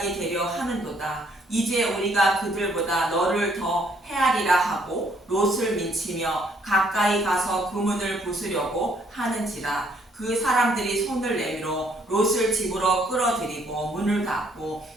되려 하는도다. 이제 우리가 그들보다 너를 더 헤아리라 하고 롯을 민치며 가까이 가서 그 문을 부수려고 하는지라. 그 사람들이 손을 내밀어 롯을 집으로 끌어들이고 문을 닫고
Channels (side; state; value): both; normal; correlation 0.67